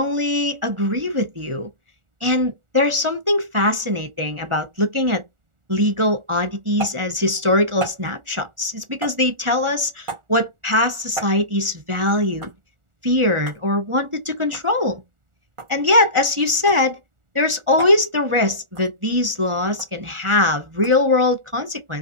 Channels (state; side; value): late; left; 1.4 ms